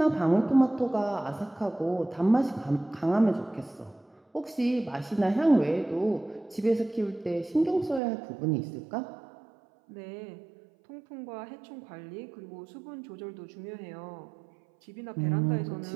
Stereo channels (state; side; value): drops out; left; at 8.0 s